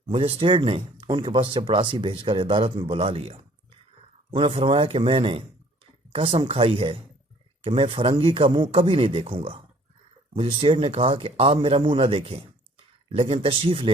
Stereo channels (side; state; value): both; normal; correlation 0.56